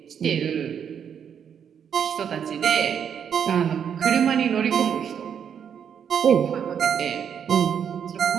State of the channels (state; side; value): quieter; left; 8.0 dB